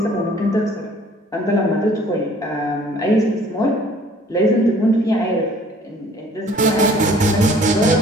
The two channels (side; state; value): both; normal; correlation 0.55